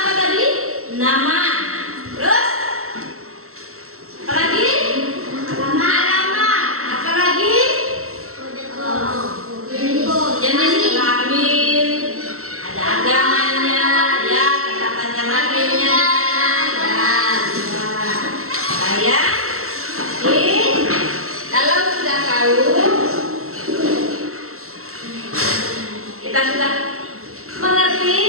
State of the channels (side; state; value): left; late; 0.63 ms